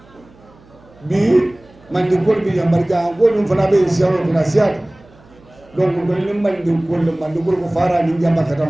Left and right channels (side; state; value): right; noise; hum, 27 dB below the sound